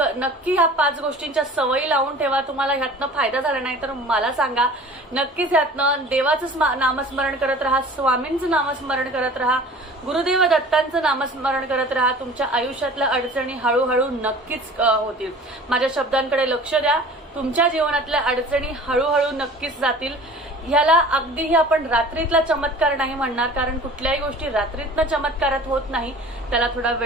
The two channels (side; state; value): both; normal; correlation 0.44